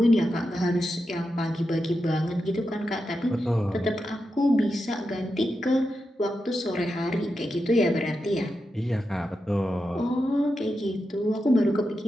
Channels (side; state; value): both; normal; correlation 0.88